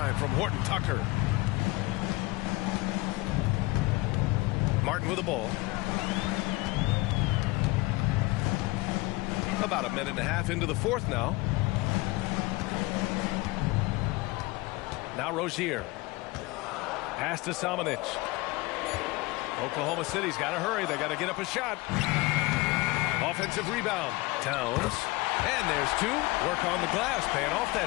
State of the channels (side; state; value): right; quieter; 22.3 dB